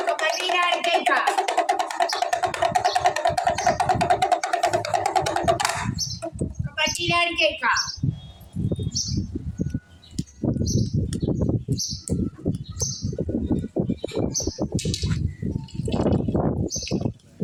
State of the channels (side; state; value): both; identical; correlation 1.00